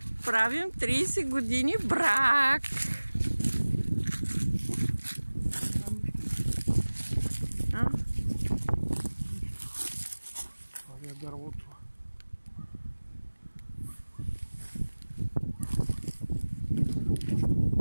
правим 30 години брак. Това е дървото.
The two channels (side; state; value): both; inverted; correlation -1.00